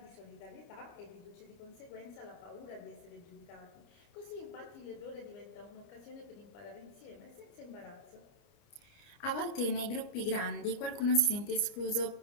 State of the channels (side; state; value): right; late; 30 ms